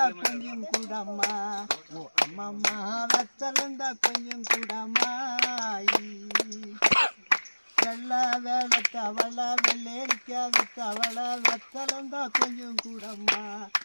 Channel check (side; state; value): both; inverted; correlation -1.00